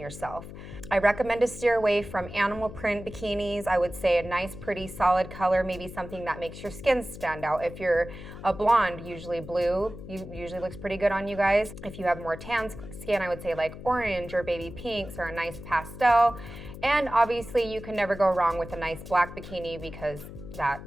I recommend to steer away from animal print bikinis. I would say a nice, pretty, solid color, maybe something that makes your skin stand out. If you're a blonde, usually blue usually looks pretty good on you guys. If you have more tan skin, I would say like orange or baby pinks or a nice pastel. And obviously you can never go wrong with a nice black bikini because that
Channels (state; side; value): noise; left; hum, 13 dB below the sound